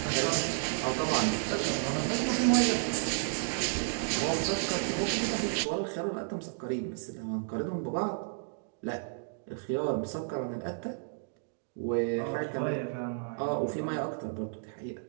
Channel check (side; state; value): left; silent; digital silence